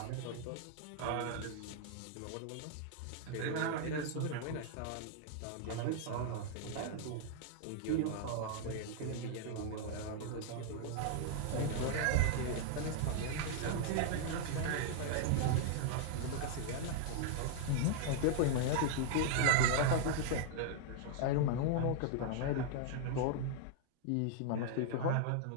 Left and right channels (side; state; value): both; different; correlation 0.00